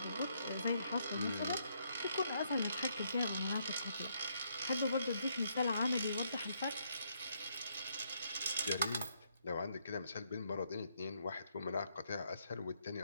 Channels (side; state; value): both; inverted; correlation -0.74